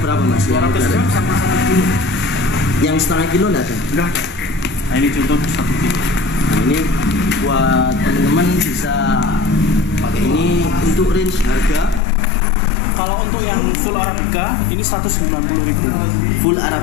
mas? Yang 200 udah gram ready? sama 1 kilo. Yang setengah kilo enggak ada? Enggak ada. Nah ini contoh 1 kilo. Nah, ini buat teman-teman bisa pakai ini. Untuk range harga Kalau untuk yang full Arabica ini 190.000. full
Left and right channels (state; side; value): drops out; right; at 12.0 s